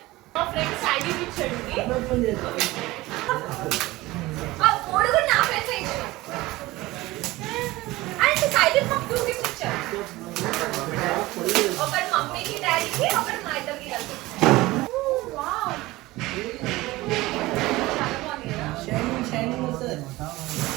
మా ఫ్రెండ్ సైడ్ ఇచ్చాడు. ఆ 3 కూడా నా ఫ్రెండ్స్ ఇచ్చాడు. అండ్ సైడ్ మాకు 2 గిఫ్ట్స్ ఇచ్చారు. ఒకటి మమ్మీకి డాడీకి ఒకటి మా ఇద్దరికి కలిసి. చాలా బాగుంది కదా.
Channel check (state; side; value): quieter; left; 19.3 dB